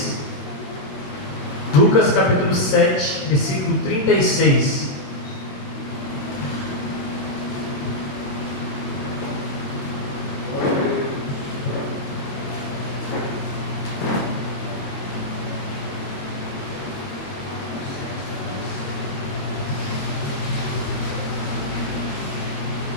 Lucas capítulo 7, versículo 36.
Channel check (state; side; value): late; right; 21 ms